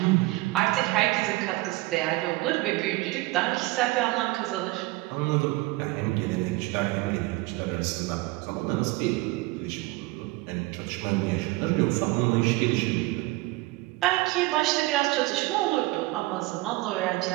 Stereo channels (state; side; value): quieter; left; 20.9 dB